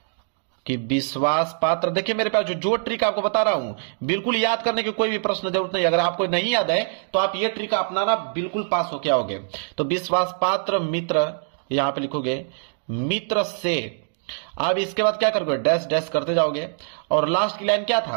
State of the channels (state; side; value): silent; left; digital silence